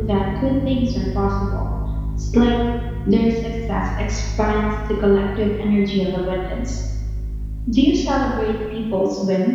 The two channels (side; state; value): both; identical; correlation 1.00